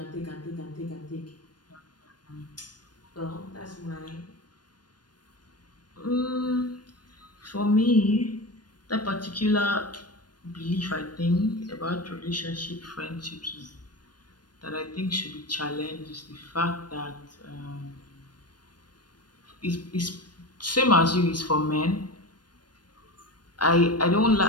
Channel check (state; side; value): late; right; 0.70 ms